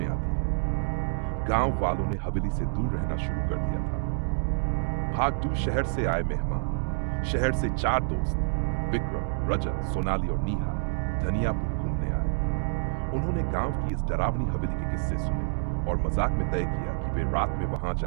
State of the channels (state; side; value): silent; left; digital silence